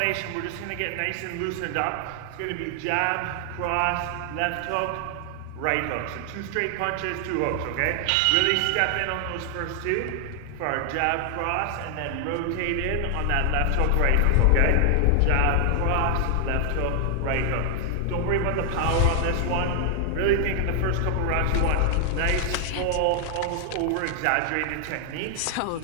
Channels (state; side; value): different; both; correlation 0.00